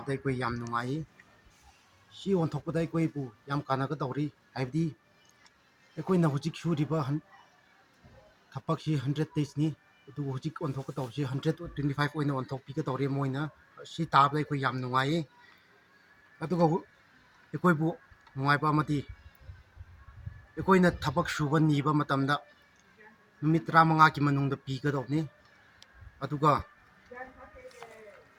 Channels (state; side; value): identical; both; correlation 1.00